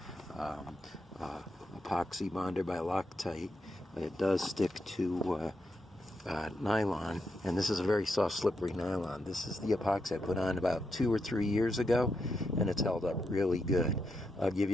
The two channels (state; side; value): normal; both; correlation 0.83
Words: Epoxy bonder by Loctite. It does stick to nylon, and this is a very soft, slippery nylon. This is the epoxy I put on about 2 or 3 years ago, and it's held up really good. I'll give